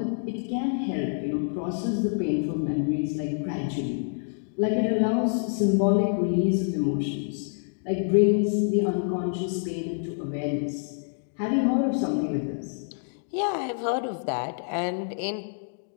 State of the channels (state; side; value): silent; right; digital silence